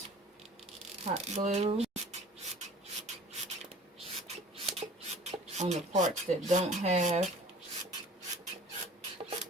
hot glue on the parts that don't have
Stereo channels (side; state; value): both; normal; correlation 0.47